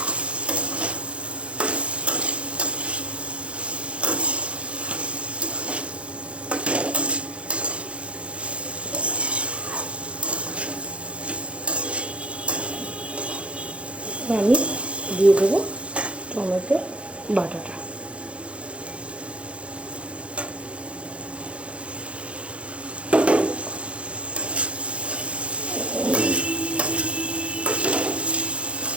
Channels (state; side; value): late; left; 0.060 ms